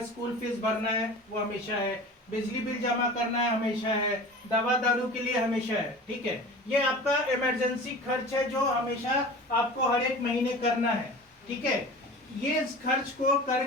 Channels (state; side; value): normal; both; correlation 0.37